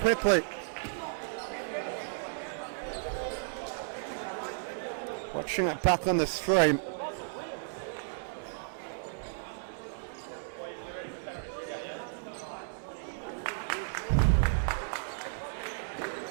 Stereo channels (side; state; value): left; silent; digital silence